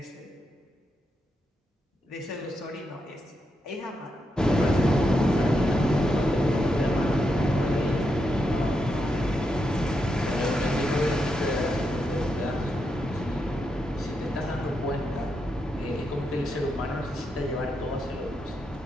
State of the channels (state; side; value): normal; both; correlation 0.84